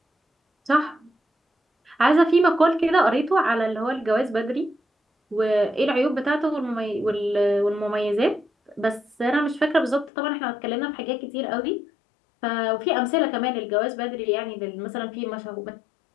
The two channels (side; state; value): right; drops out; at 10.1 s